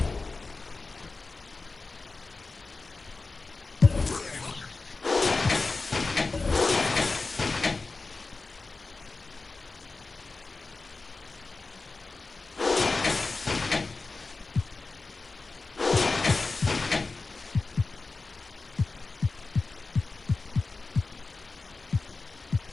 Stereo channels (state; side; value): quieter; right; 3.7 dB